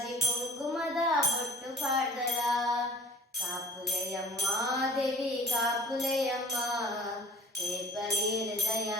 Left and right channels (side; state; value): both; normal; correlation 0.50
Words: ಕುಂಕುಮದ ಬೊಟ್ಟು ಪಾಡ್ದರ ಕಾಪುಲೆಯಮ್ಮ ದೇವಿ ಕಾಪುಲೆಯಮ್ಮ ರೇಪಲಿ